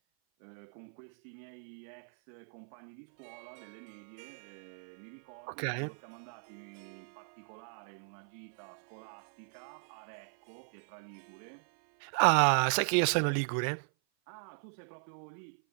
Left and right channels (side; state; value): left; silent; 53 dB below the other